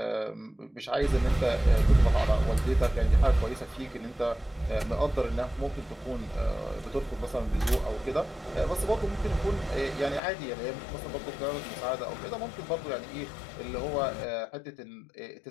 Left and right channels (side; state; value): right; drops out; at 10.2 s